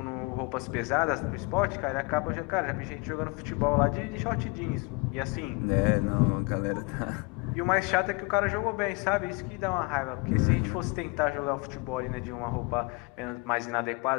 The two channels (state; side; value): quieter; right; 27.4 dB